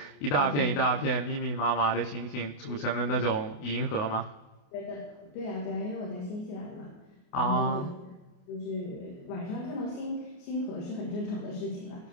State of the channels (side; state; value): right; late; 28 ms